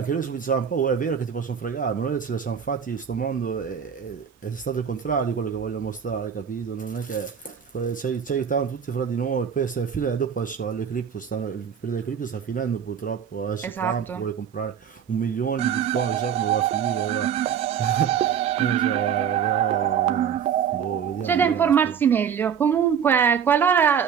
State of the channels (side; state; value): left; quieter; 7.8 dB